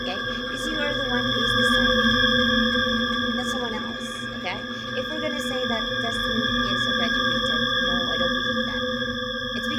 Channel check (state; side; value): identical; both; correlation 1.00